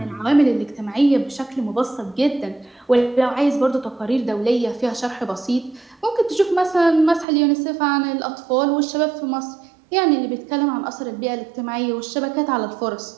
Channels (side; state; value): left; drops out; at 7.2 s